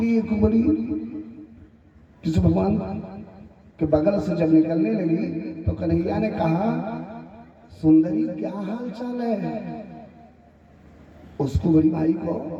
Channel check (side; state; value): both; identical; correlation 1.00